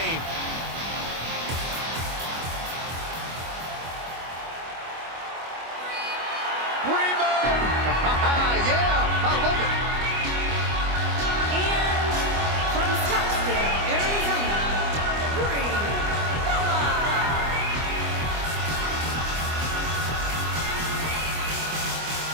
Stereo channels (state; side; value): late; left; 25 ms